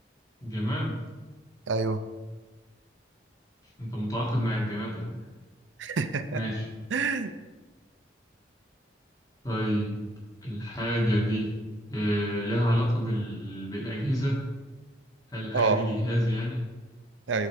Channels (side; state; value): both; normal; correlation 0.62